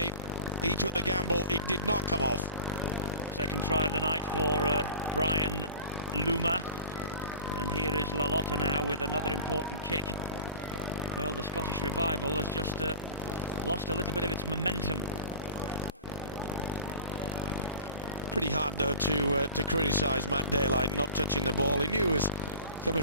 He took the gamble, it did not come off. Second try of the night for Brian Luma. And here is Lalotta now with another important kick. Well, the Scottish revival has just lost a little bit of its momentum. Pretty hard, though, to criticise Matt Daylight not touching the ball. He knew it was coming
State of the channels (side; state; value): both; inverted; correlation -0.37